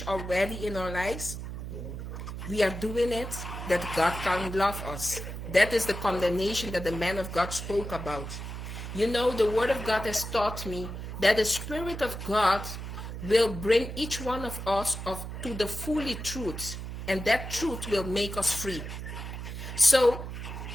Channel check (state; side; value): noise; right; hum, 7 dB below the sound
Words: already in our lives, we are doing it, that God can't love us. That is the condemnation that the man of God spoke about. You know, the word of God has taught me that the Spirit of God will bring each one of us to the fully truth, and that truth will make us free. So